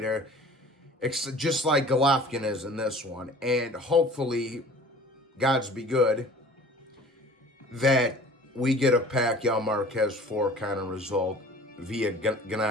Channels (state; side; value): normal; both; correlation 0.46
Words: just like Golovkin is in this one. And hopefully, God's be good, that we get a Pacquiao-Marquez 4 kind of result via